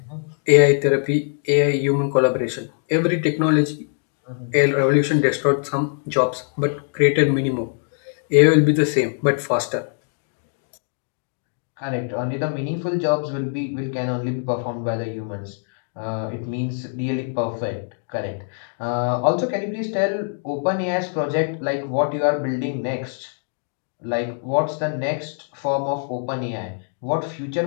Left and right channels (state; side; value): silent; right; 64 dB below the other